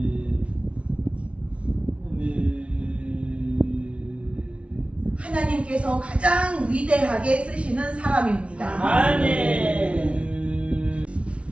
하나님께서 가장 위대하게 쓰시는 사람입니다. 아멘.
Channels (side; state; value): left; late; 0.061 ms